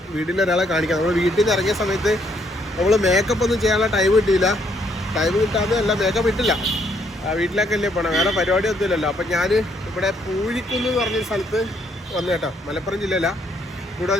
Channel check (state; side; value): normal; both; correlation 0.70